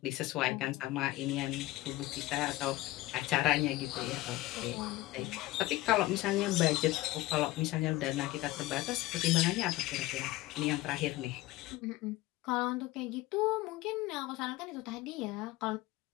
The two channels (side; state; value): right; quieter; 18.2 dB